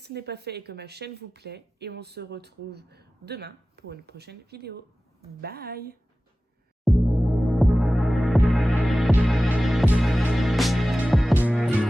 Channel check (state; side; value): normal; both; correlation 0.96